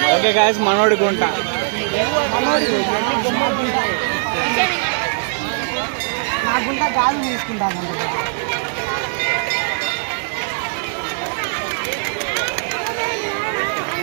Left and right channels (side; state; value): left; silent; digital silence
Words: ఓకే గాయస్, మనోడి గుంట.